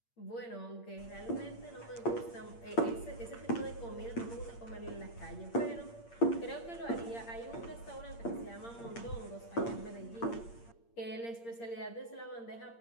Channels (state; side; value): late; right; 8.6 ms